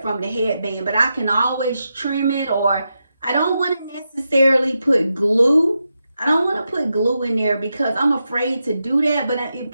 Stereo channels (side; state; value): both; inverted; correlation -0.87